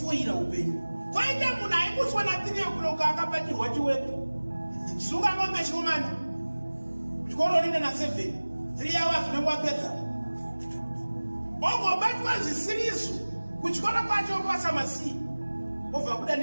upenyu. Kwaita munhu aimboswa na 3 o'clock akabatirwa chiwepo. Sunga ngombe chomani. Chikoro rine na 7. 3 hours unongwapedza. Ongobatwa zvisiriso. Kuchikora kwacho pasa masi. Obva kuda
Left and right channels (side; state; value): both; inverted; correlation -1.00